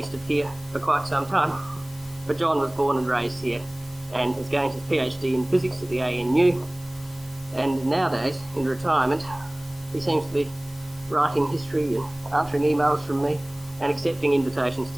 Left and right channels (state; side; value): noise; left; hiss, 23 dB below the sound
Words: of here for quite some time. But John was born and raised here and has gained his PhD in physics at the ANU. And nowadays, in retirement, he seems to be writing history and answering emails from me and accepting invitations